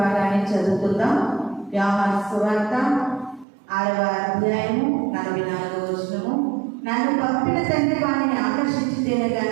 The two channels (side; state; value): left; drops out; at 3.5 s